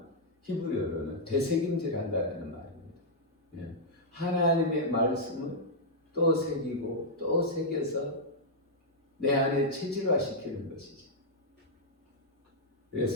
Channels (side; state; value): both; normal; correlation -0.06